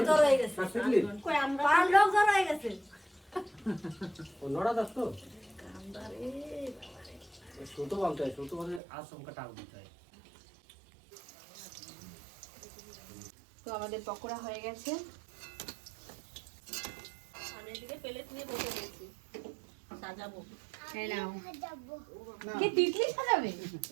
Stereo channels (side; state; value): left; drops out; at 8.8 s